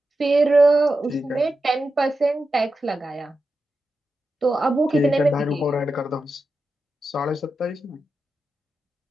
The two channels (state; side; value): normal; both; correlation 0.90